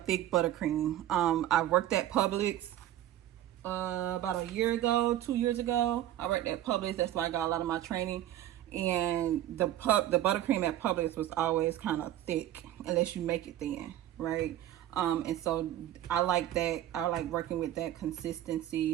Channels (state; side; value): quieter; left; 12.8 dB